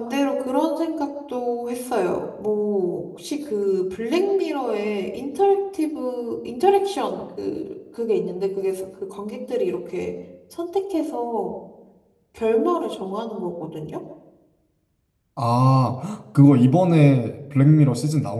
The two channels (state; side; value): identical; both; correlation 1.00